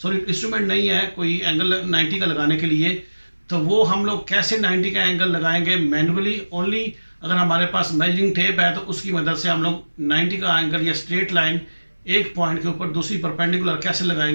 इंस्ट्रूमेंट नहीं है कोई एंगल 90 का लगाने के लिए, तो वो हम लोग कैसे 90 का एंगल लगाएंगे मैनुअली ओनली। अगर हमारे पास मेजरिंग टेप है तो उसकी मदद से हम लोग 90 का एंगल या स्ट्रेट लाइन एक पॉइंट के ऊपर दूसरी परपेंडिकुलर कैसे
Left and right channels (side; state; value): both; inverted; correlation -1.00